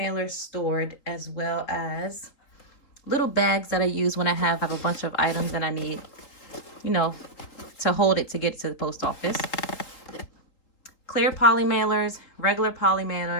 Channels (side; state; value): right; late; 3.8 ms